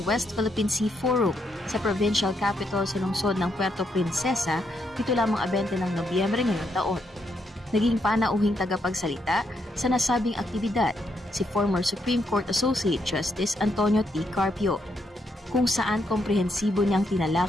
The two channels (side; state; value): both; normal; correlation 0.78